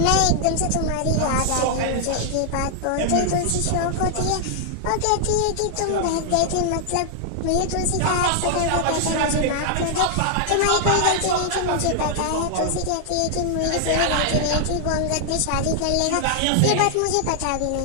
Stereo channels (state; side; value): different; both; correlation 0.00